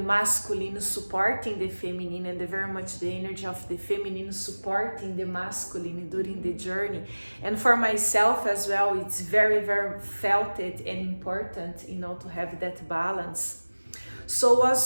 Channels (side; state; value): both; inverted; correlation -1.00